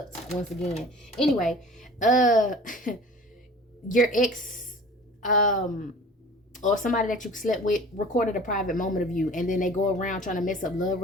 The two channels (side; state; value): both; normal; correlation 0.43